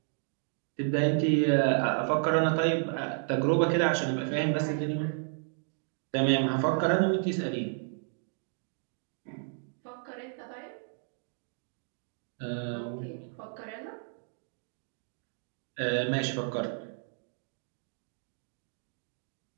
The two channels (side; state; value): left; silent; 56 dB below the other